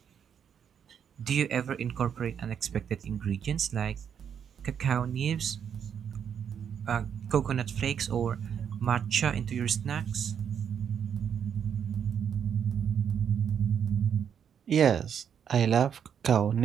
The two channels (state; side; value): quieter; left; 8.0 dB